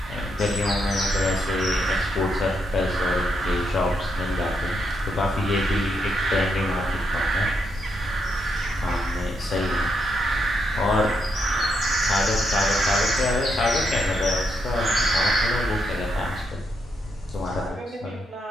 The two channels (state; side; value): normal; both; correlation 0.79